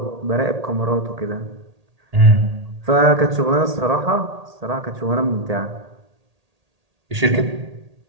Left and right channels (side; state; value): left; late; 1.8 ms